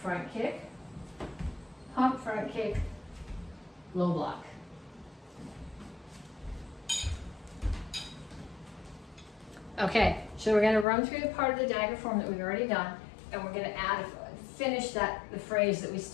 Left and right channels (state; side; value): drops out; right; at 10.9 s